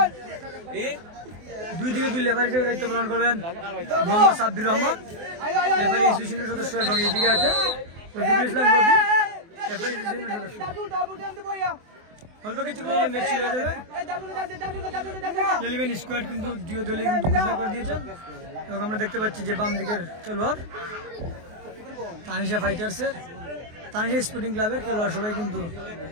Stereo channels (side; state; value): left; late; 24 ms